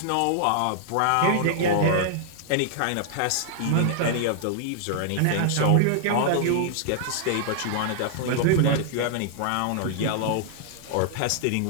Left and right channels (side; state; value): both; different; correlation -0.01